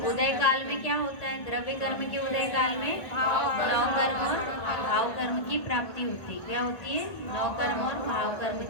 उदय काल में क्या होता है, द्रव्य कर्म के उदय काल में नौ कर्म और भाव कर्म की प्राप्ति होती है। क्या होती है, नौ कर्म और भाव कर्म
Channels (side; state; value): right; late; 1.4 ms